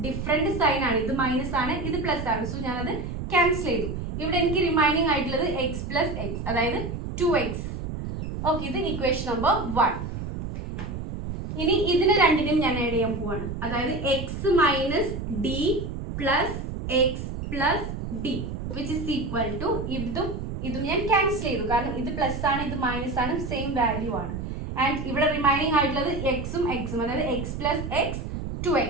ഡിഫറെന്റ് സൈൻ ആണ്. ഇത് മൈനസ് ആണ്, ഇത് പ്ലസ് ആണ്. സോ ഞാനത് ക്യാൻസൽ ചെയ്തു. ഇവിടെ എനിക്ക് റിമൈനിങ് ആയിട്ടുള്ളത് എക്സ് പ്ലസ് എക്സ്, അതായത് 2x. ഓക്കെ, ഇത് ഇക്വേഷൻ നമ്പർ 1. ഇനി ഇതിനെ രണ്ടിനും ഞാൻ ആഡ് ചെയ്യാൻ പോവാണ്. അതായത് x minus d plus x plus d which is equal to ഇതും ഞാൻ ക്യാൻസൽ ചെയ്തു, കാരണം ഇത് പ്ലസ് ആണ് ഇത് മൈനസ് ആണ്, സെയിം വാല്യൂ ആണ്. ആൻഡ് ഇവിടെ റിമൈനിങ് ആയിട്ടുള്ളത് എക്സും എക്സും, അതായത് x plus x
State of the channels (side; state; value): right; noise; rumble, 6 dB below the sound